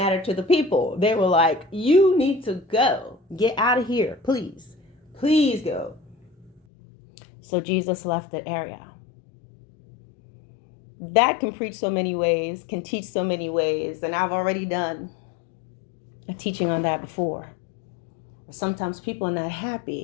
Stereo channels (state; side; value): drops out; right; at 6.6 s